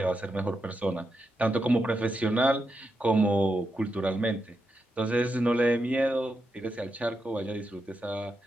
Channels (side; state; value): both; normal; correlation 0.85